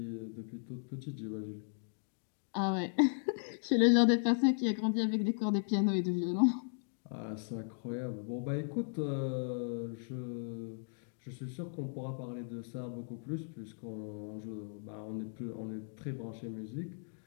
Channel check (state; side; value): silent; right; digital silence